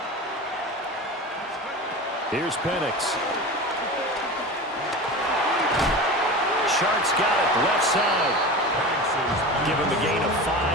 Here's Penix. Sharks got it, left side. Give him a gain of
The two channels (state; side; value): normal; both; correlation 0.30